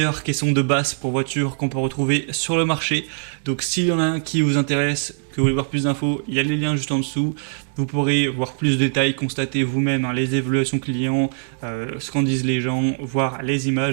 caissons de basse pour voiture qu'on peut retrouver sur le marché. Donc s'il y en a un qui vous intéresse, que vous voulez voir plus d'infos, il y a les liens juste en dessous. Vous pourrez voir plus de détails, constater vous-même les évaluations clients, ce qu'en disent les gens, voir les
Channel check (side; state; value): left; silent; digital silence